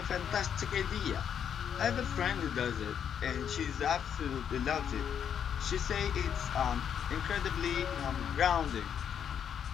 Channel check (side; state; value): right; quieter; 8.4 dB